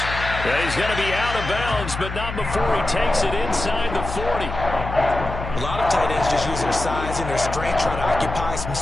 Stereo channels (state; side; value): noise; left; hum, 7 dB below the sound